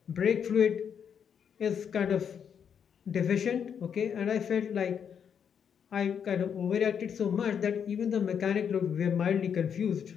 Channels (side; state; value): right; quieter; 7.7 dB